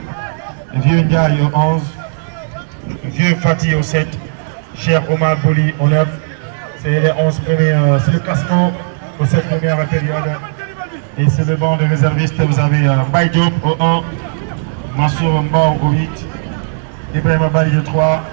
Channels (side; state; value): left; silent; 65 dB below the other